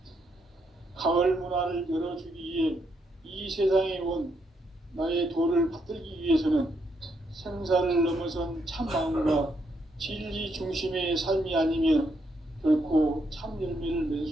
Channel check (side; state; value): both; normal; correlation 0.77